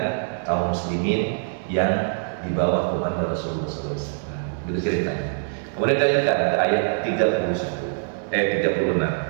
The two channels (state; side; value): silent; left; 62 dB below the other